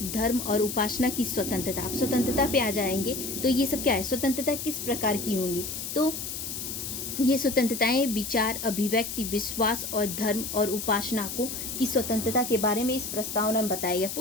धर्म और उपासना की स्वतंत्रता। आप स्वतंत्रता पे आ जाएंगे तो ये सब क्या है, स्वतंत्रता किस प्रकार की होंगी, तो ये स्वतंत्रताएं विचार, अभिव्यक्ति, विश्वास और धर्म और उपासना को की स्वतंत्रता के बारे में इस प्रस्तावना में बताया गया।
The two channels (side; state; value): left; noise; hiss, 6 dB below the sound